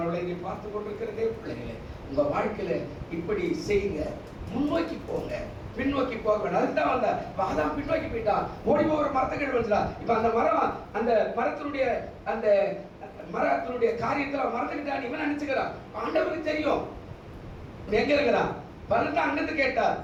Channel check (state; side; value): identical; both; correlation 1.00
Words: நீ பார்த்து கொண்டிருக்கிறதே பிள்ளைகளே, உங்க வாழ்க்கையில இப்படி செய்யுங்க, முன்னோக்கி போங்க, பின்னோக்கி போக வேண்டாம். அதுதான் வந்த அதான் பின்னோக்கி போயிட்டான், ஓடி போகிற மரத்துக்கு வந்துடா. இப்ப அந்த மரம், அந்த மரத்தினுடைய காரியத்துல மறந்துக்கிட்டான் இவன் நினைச்சுக்கிறான். ஆண்டவருக்கு தெரியும் எங்க இருக்கிறான். பலன் அங்கிருந்து கேட்டார்,